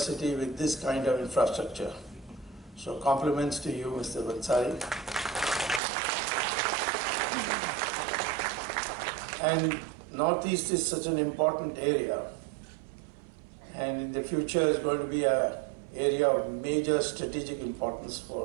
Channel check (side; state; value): left; drops out; at 5.8 s